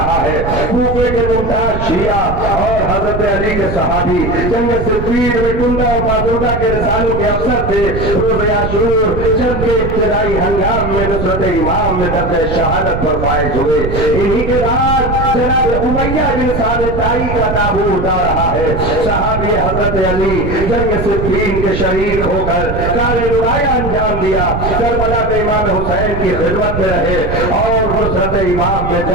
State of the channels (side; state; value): right; noise; rumble, 4 dB below the sound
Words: है। कूफे के मुमताज शिया और हजरत अली के सहाबी जंग सिफ़ीन में कुंदा और मादुर्गा के रसालों के अफसर थे। रोज़े आशूर जंग के इब्तिदाई हंगाम में नुसरत इमाम में दर्जे शहादत पर फायज हुए। इन्हीं के बाद जनाब उमैया बिन साद ताई का ताबू उतार रहा है। सहाबी हजरत अली जंग सिफ़ीन के शरीक होकर कारे नुराया अंजाम दिया। करबला में इमाम हुसैन की खिदमत में रहे और नुसरत इमाम में